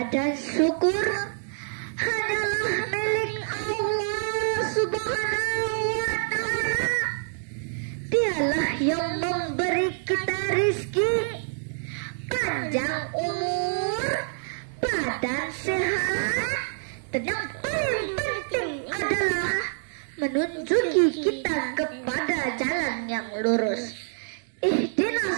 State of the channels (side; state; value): left; silent; digital silence